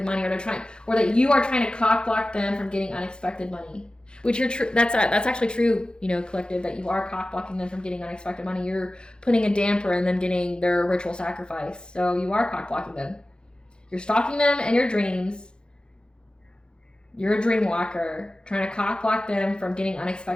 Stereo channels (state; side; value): late; right; 0.049 ms